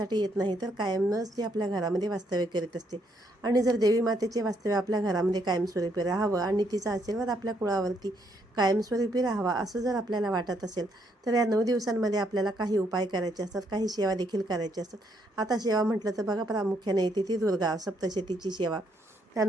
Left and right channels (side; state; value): both; normal; correlation 0.73